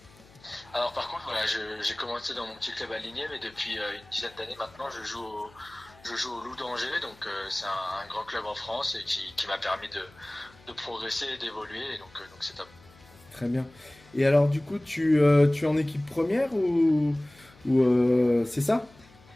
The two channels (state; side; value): noise; left; hum, 26 dB below the sound